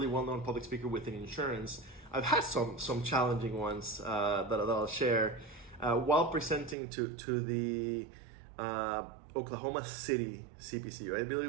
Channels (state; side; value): drops out; left; at 6.8 s